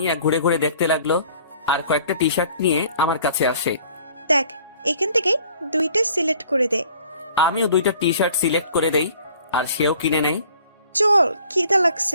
ঘুরে ঘুরে দেখতে লাগলো আর কয়েকটা টি শার্ট নিয়ে আমার কাছে আসে। দেখ, এখান থেকে দুইটা সিলেক্ট করে দে। আমিও দুইটা টি শার্ট সিলেক্ট করে দেই, আর সেও কিনে নেই। চল, খিদা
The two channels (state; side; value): inverted; both; correlation -0.54